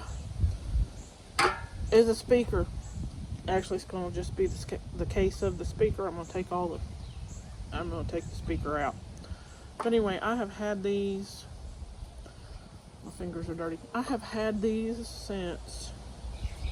as a speaker. Actually, it's going to just be the case of the speaker. I'm going to take the speaker out. But anyway, I have had these, my fingers are dirty. I have had these since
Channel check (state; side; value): identical; both; correlation 1.00